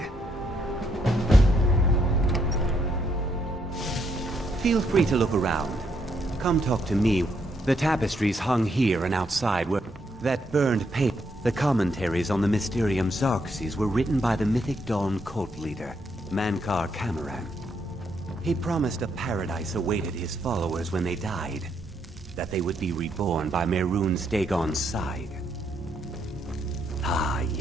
Feel free to look around. Come talk to me. The tapestries hung here and outside were... That burned paper. The commentaries on the Mysterium Xarxes were written by the Mythic Dawn cult leader, Mankar Cameron. He promised a paradise awaited his followers when they died. That they would be reborn by Mehrunes Dagon's side. Ah,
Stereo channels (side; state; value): both; normal; correlation 0.75